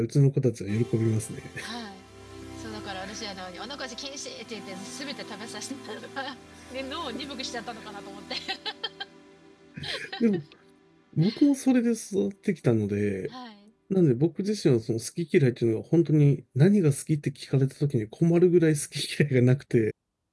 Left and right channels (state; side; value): identical; both; correlation 1.00